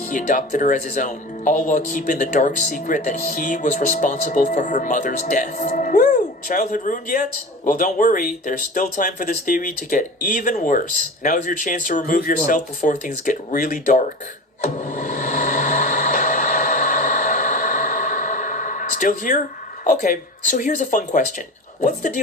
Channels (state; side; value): normal; both; correlation 0.32